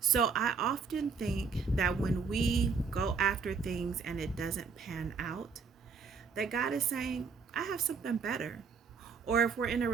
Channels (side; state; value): left; quieter; 5.3 dB